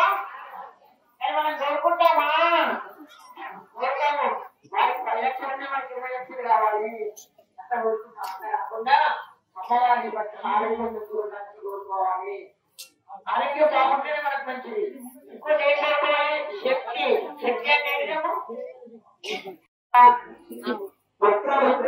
అని మనం కోరుకుంటామా, కోరుతాము వారికి 10 లక్షలు మనకి 20 లక్షలు కావాలి అంత కోరుకుంటాం. అంత కాకుండా అమ్మవారిని బట్టి ఆరోగ్యం కోరుకోవాలి, ఆరోగ్యం బాగుంటేనే మనకు మంచిది. ఇంకోటి ఏం కోరుకోవాలి, శక్తి, శక్తి అంటే ఏంటమ్మా,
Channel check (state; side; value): identical; both; correlation 1.00